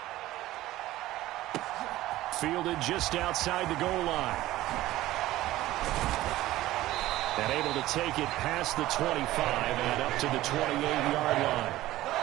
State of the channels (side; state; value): left; quieter; 16.0 dB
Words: Fielded just outside the goal line. And able to take it past the 25 and up to the 28-yard line.